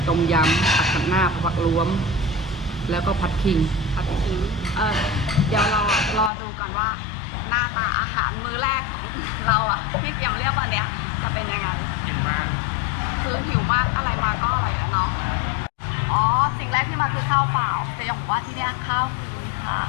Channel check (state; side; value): drops out; right; at 6.3 s